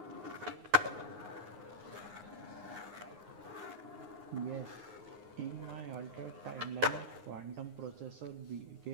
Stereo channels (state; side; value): late; left; 9.6 ms